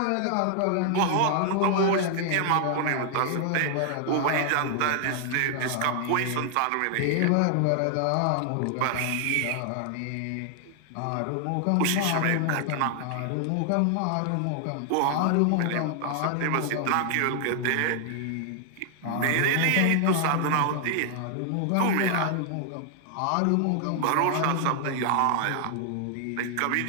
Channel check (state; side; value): different; both; correlation 0.00